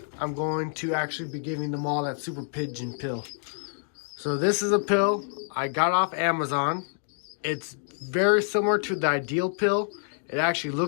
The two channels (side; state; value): right; silent; 60 dB below the other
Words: I'm going to actually be giving them all that super pigeon pill. So this is a pill I got off Amazon. It's very similar to the ideal pill. It actually